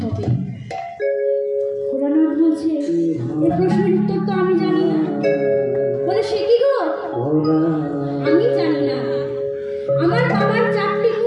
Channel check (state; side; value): identical; both; correlation 1.00